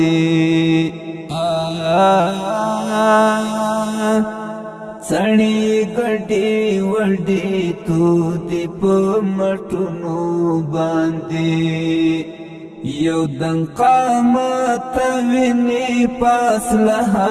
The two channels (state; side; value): identical; both; correlation 1.00